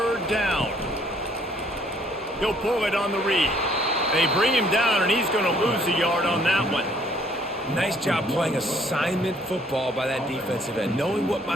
down. He'll pull it on the read. They bring him down, and he's going to lose a yard on that one. Nice job playing assignment football by that defensive end. Knowing what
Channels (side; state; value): both; normal; correlation 0.63